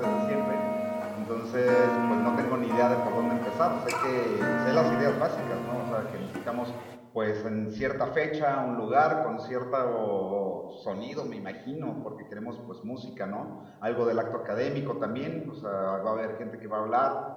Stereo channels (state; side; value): identical; both; correlation 1.00